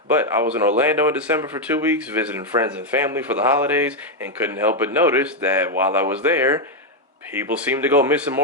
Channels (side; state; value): both; normal; correlation 0.02